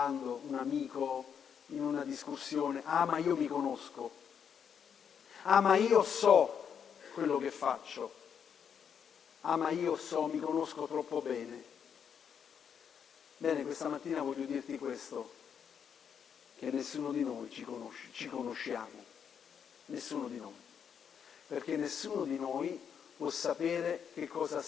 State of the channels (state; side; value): quieter; right; 7.6 dB